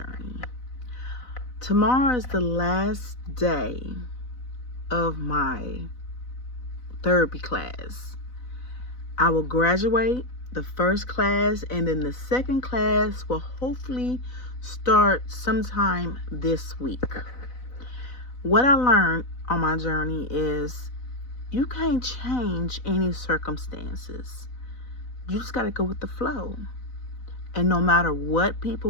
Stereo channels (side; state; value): right; late; 4.0 ms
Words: Tomorrow is the last day of my therapy class. I will graduate the first class, and then the second class will hopefully start sometime this week. What I learned on my journey is you can't change any circumstances. You just got to go with the flow. And no matter what